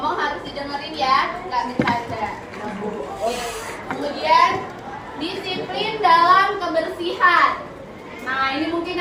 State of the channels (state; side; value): identical; both; correlation 1.00